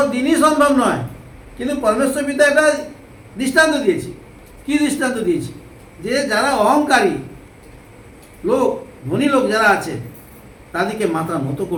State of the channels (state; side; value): identical; both; correlation 1.00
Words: দিনই সম্ভব নয়। কিন্তু পরমেশ্বর পিতা একটা দৃষ্টান্ত দিয়েছে। কি দৃষ্টান্ত দিয়েছে? যে যারা অহংকারী লোক, ধনী লোক যারা আছে, তাদেরকে মাথা নত